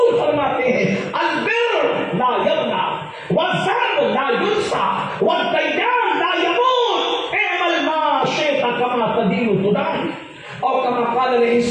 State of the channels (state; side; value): identical; both; correlation 1.00